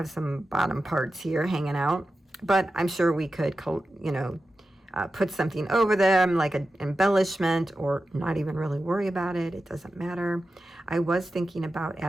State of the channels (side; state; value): both; normal; correlation 0.92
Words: some bottom parts here hanging out, but I'm sure we could, put something over them like an embellishment, or not even really worry about it. It doesn't matter. I was thinking about